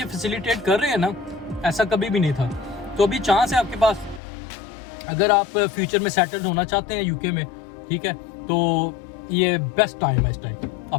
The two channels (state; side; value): drops out; right; at 4.2 s